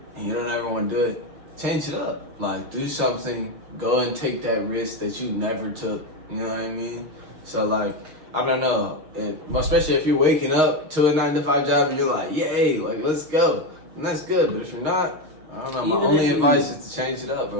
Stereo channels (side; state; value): left; late; 6.4 ms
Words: and you don't ever want to do it, change it up. Like, do something. Go and take that risk that you never took. You know what I mean? So, like, I don't know. Especially if you're waking up to a 9-to-5 job and you're like, yay, like, let's go. And that's good. But if you're not, I don't know. My only advice is to change it up,